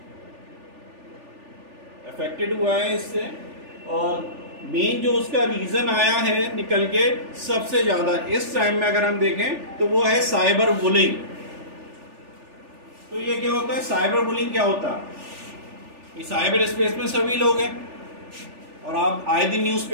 अफेक्टेड हुआ है इससे, और मेन जो उसका रीजन आया है निकल के सबसे ज्यादा इस टाइम में अगर हम देखें तो वो है साइबर बुलिंग। तो ये क्या होता है? साइबर बुलिंग क्या होता है? ये साइबर स्पेस में सभी लोग हैं और आप आए दिन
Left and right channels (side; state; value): left; late; 3.4 ms